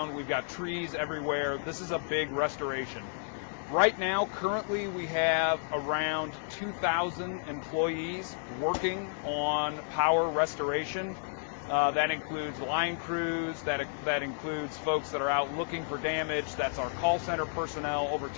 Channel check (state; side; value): silent; right; 57 dB below the other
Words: We've got trees everywhere. This is a big restoration. Right now, currently, we have around 2,000 employees working on power restoration. That includes line crews, that includes folks that are out looking for damage, that's our call center personnel, over